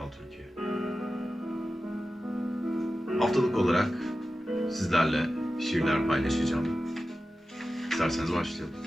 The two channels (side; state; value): both; normal; correlation 0.94